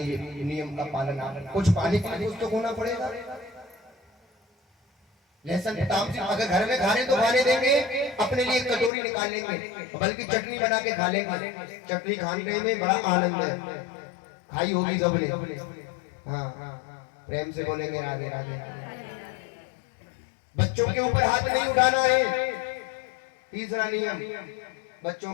नियम का पालन, कुछ पानी के लिए कुछ तो खोना पड़ेगा। लहसुन तामसिक अगर घर में खाने तो खाने देंगे, अपने लिए कटोरी निकाल लेंगे, बल्कि चटनी बना के खा लेंगे। चटनी खाने में बड़ा आनंद है, खाई होगी सबने। हाँ, प्रेम से बोलेंगे राधे राधे। बच्चों के ऊपर हाथ नहीं उठाना है, तीसरा नियम, बच्चों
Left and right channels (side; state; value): right; drops out; at 8.9 s